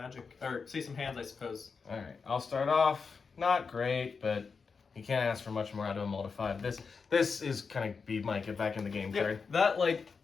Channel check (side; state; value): right; quieter; 5.2 dB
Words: or see some hands, I suppose. All right, I'll start off. Not great, but you can't ask for much more out of a mull to 5. This is kind of be my get back in the game card. That